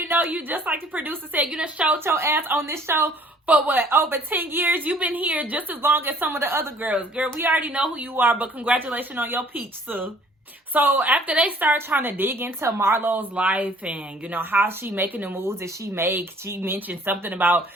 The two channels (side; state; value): both; normal; correlation 0.56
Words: know you, just like the producer said. You done showed your ass on this show for what, over 10 years? You've been here just as long as some of the other girls. Girl, we already know who you are, but congratulations on your peach, Sue. So after they start trying to dig into Marlo's life and, how she making the moves that she makes, she mentioned something about